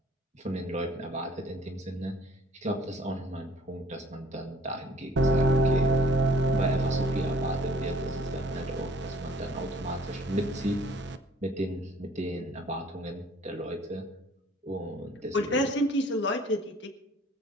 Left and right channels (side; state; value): both; normal; correlation 0.56